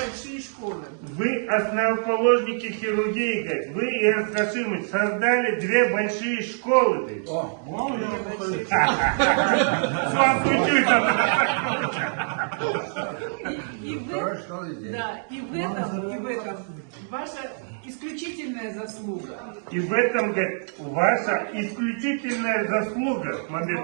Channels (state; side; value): silent; left; digital silence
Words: школы. Вы основоположники хирургии, говорит. Вы и Арсашимович создали две большие школы. Говорит. С вас учусь. И в этом ваша исключительная заслуга. И в этом, говорит, ваша исключительная заслуга,